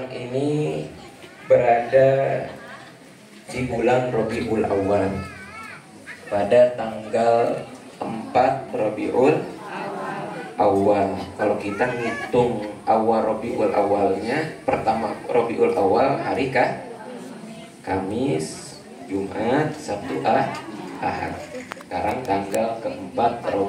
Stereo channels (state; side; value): identical; both; correlation 1.00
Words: ini berada di bulan Rabiul Awal pada tanggal 4 Rabiul Awal. Kalau kita ngitung awal Rabiul Awalnya, pertama Rabiul Awal hari Kamis, Jumat, Sabtu, Ahad. Sekarang tanggal keempat